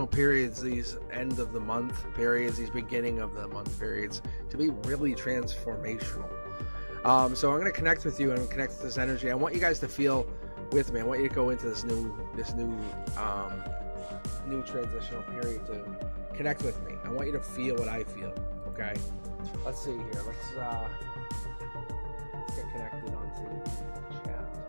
periods, these end of the month periods, these beginning of the month periods to be really transformational. So I'm going to connect with you and connect with this energy. I want you guys to feel with me. I want you to go into this new transitional period to connect with me. I want you to feel what I feel. Okay. Let's see here. Let's get connected onto chat.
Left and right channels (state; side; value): inverted; both; correlation -1.00